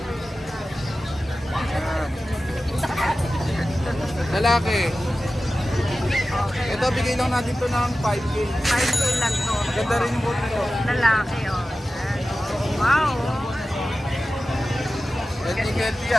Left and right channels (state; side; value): normal; both; correlation 0.94